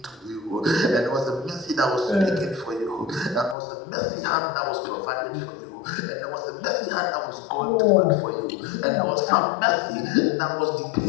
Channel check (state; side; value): drops out; right; at 3.6 s